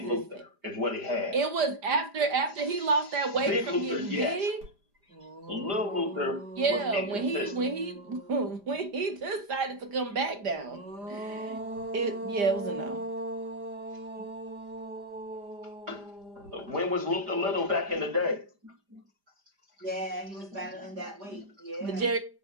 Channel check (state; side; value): late; left; 5.0 ms